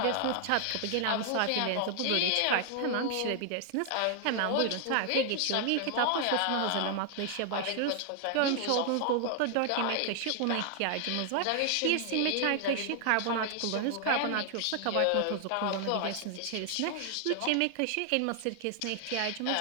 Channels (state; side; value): different; both; correlation 0.00